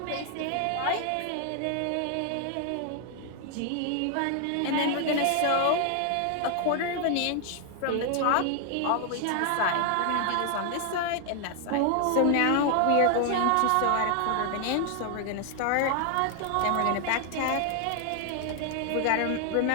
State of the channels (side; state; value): both; different; correlation 0.00